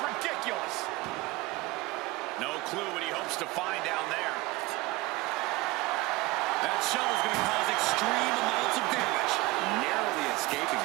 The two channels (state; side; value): quieter; left; 20.8 dB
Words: No clue what he hopes to find down there. That shovel's going to cause extreme amounts of damage. Narrowly escaping